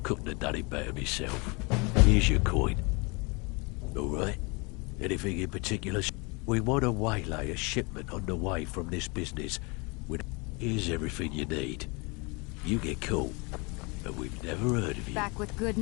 Couldn't have done it better myself. Here's your coin. All right? Anything in particular? We want to waylay a shipment on the way from this business. Here's everything you need. You get caught, and we've never heard of you. Back with good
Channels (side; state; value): right; quieter; 29.2 dB